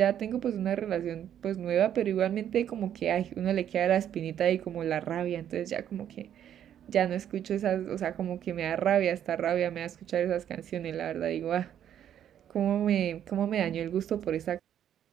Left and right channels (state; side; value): quieter; left; 10.1 dB